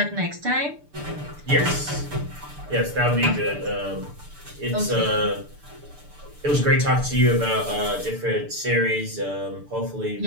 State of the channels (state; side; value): late; left; 6.8 ms